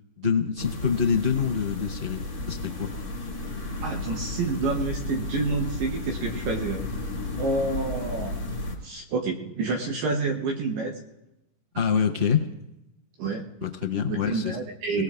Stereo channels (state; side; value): late; left; 11 ms